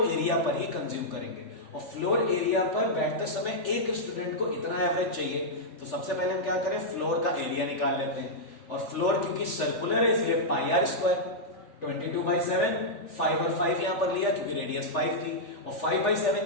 एरिया पर ही कंज्यूम करेंगे, और फ्लोर एरिया पर बैठते समय एक स्टूडेंट को इतना एवरेज चाहिए। तो सबसे पहले हम क्या करें, फ्लोर का एरिया निकाल लेते हैं, और फ्लोर क्योंकि सर्कुलर है इसलिए पाई आर स्क्वायर 22/7, 5 और 5 यहां पर लिया क्योंकि रेडियस 5 थी, और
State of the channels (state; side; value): late; right; 3.4 ms